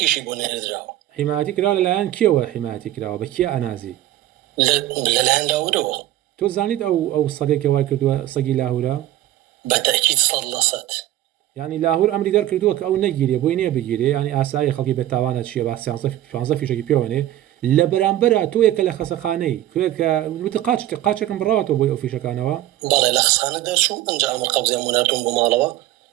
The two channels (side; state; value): left; quieter; 14.0 dB